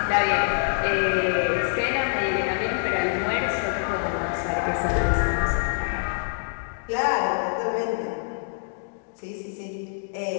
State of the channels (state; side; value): silent; right; digital silence